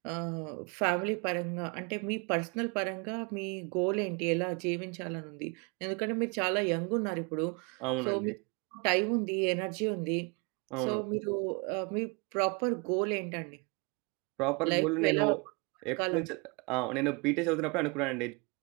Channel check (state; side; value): quieter; left; 30.8 dB